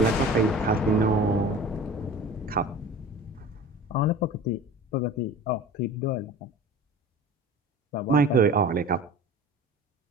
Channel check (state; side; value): normal; both; correlation 0.39